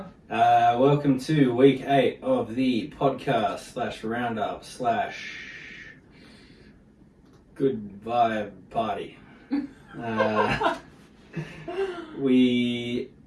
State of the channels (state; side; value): identical; both; correlation 1.00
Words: Welcome to week 8 of the podcast / roundup / good vibe party. We